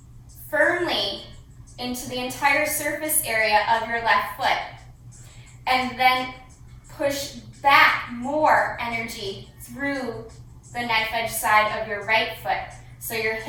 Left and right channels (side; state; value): both; identical; correlation 1.00